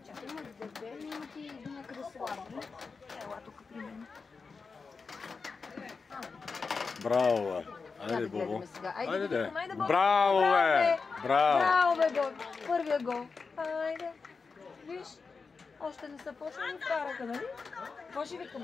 Чакай, имаш дебели и ти някъде слабо. Ела тук при мен. Браво, бе. Айде, Бобо. Айде, да. Браво, бе. Браво. Браво, бе, гол. Първия гол. Айде. Виж, още не са почнали вкараха, нали? Какво ще викаме?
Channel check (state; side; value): quieter; right; 4.7 dB